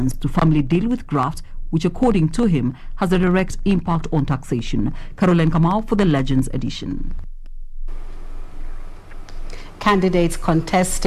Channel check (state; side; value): identical; both; correlation 1.00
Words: to firmly deal with graft, which according to him has a direct impact on taxation. Caroline Kamau for the Legends edition. Candidates